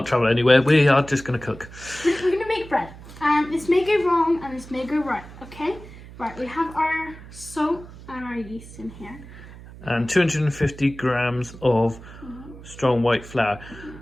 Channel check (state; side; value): noise; right; hum, 17 dB below the sound